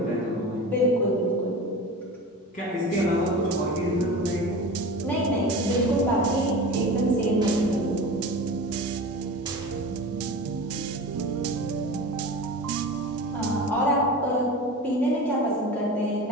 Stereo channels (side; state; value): both; normal; correlation 0.32